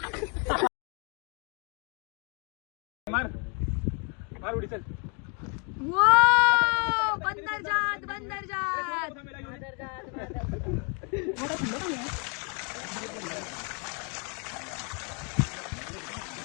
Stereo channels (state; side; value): quieter; right; 36.2 dB